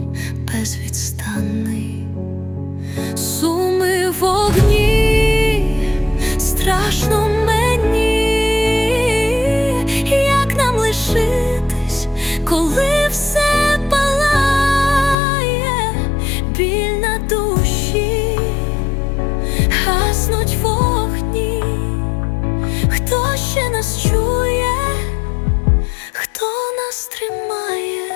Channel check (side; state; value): right; drops out; at 15.2 s